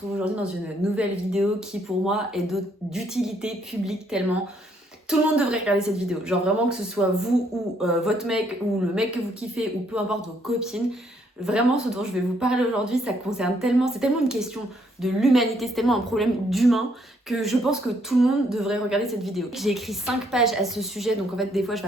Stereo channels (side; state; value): both; normal; correlation 0.70